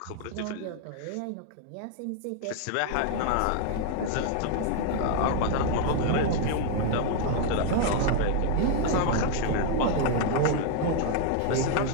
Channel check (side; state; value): both; different; correlation 0.00